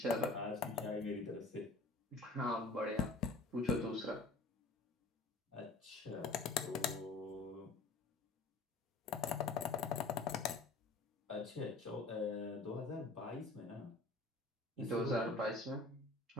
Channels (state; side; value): quieter; right; 3.3 dB